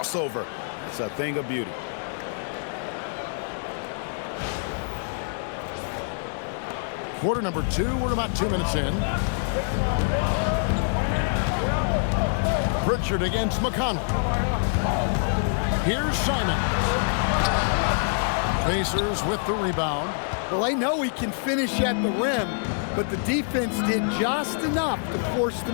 That's a thing of beauty. Quarter number 2. We're about 2 minutes in. Pritchard against McConnell. Here's Simons. Pacers with the rebound. Well, I know he can finish at the rim, but the defense did just enough to force the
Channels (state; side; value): silent; right; digital silence